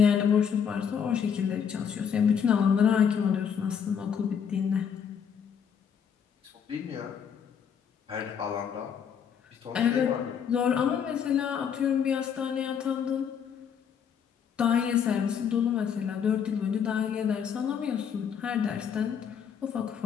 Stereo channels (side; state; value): right; quieter; 7.5 dB